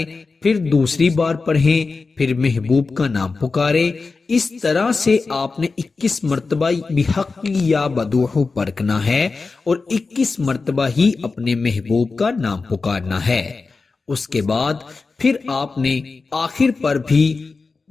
پھر دوسری بار پڑھیں، پھر محبوب کا نام پکاریں۔ اس طرح سے آپ نے 21 مرتبہ بحق یا بدوحو پڑھنا ہے اور 21 مرتبہ ہی اپنے محبوب کا نام پکارنا ہے۔ اس کے بعد پھر آپ نے آخر پر بھی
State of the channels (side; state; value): right; quieter; 4.2 dB